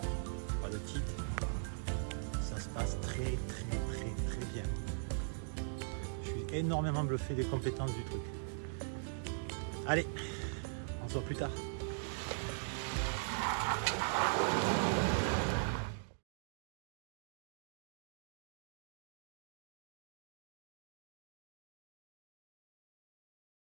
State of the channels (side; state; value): left; silent; digital silence